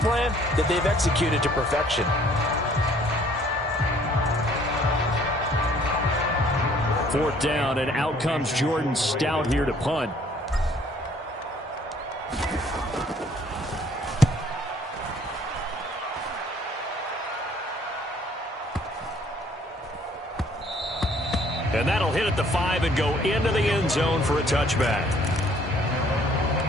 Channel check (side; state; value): both; normal; correlation 0.59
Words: that they've executed to perfection. 4th down, and out comes Jordan Stout here to punt. And that'll hit at the 5 and go into the end zone for a touchback.